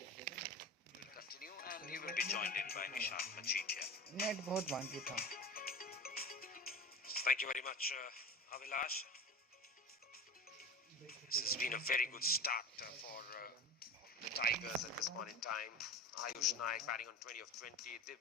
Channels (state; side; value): normal; both; correlation 0.31